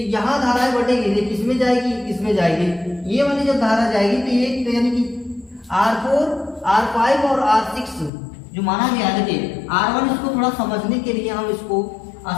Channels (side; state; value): right; drops out; at 8.1 s